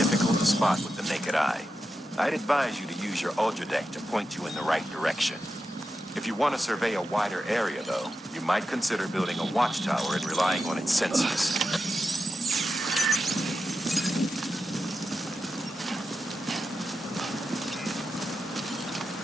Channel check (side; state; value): both; normal; correlation 0.89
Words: to spot with the naked eye. I'd advise you to use your ultra deck to point you in the right direction. If you want to survey a wider area, though, you might consider building a watchtower and relying on its sensors.